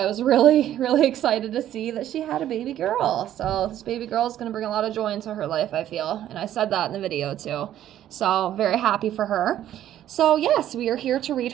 was really, really excited to see that she had a baby girl. So this baby girl is going to bring a lot of joy into her life, I feel, and I said that in the video too. So very happy for her. So yes, we are here to read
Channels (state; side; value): quieter; left; 11.9 dB